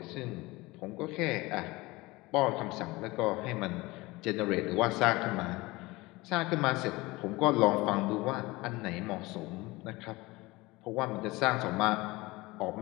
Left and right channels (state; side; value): quieter; right; 21.6 dB